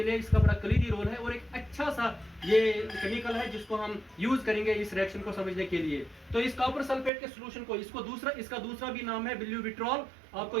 लिए इसका बड़ा कलीदी रोल है और एक अच्छा सा ये केमिकल है जिसको हम यूज करेंगे इस रिएक्शन को समझने के लिए। तो इस कॉपर सल्फेट के सोल्यूशन को इसका दूसरा भी नाम है ब्यूविट्रॉल। आपको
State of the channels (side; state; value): left; drops out; at 7.1 s